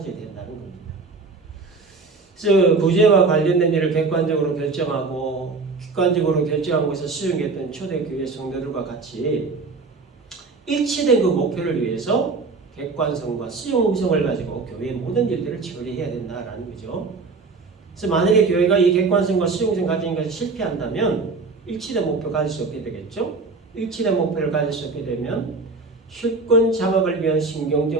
된다는 겁니다. 그래서 구제와 관련된 일을 객관적으로 결정하고 객관적으로 결정한 것을 수용했던 초대교회 성도들과 같이 일치된 그 목표를 위해서 객관성과 수용성을 가지고 교회의 모든 일들을 처리해야 된다라는 거죠. 그래서 만약에 교회가 이 객관성과 수용성 가진 것을 실패한다면 일치된 목표 가질 수 없게 되겠죠. 일치된 목표를 가질 수 없게 되면 실권 장악을 위한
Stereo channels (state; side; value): quieter; left; 4.1 dB